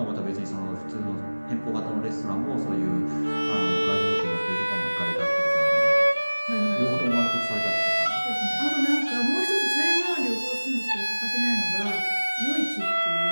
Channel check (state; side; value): inverted; both; correlation -1.00